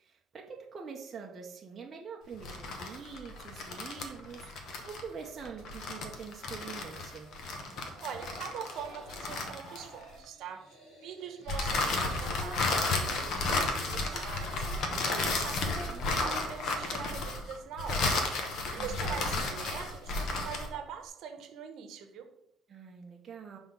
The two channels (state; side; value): normal; both; correlation 0.52